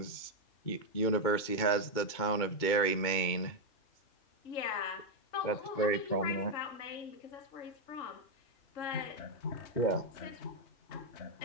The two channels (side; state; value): right; late; 2.2 ms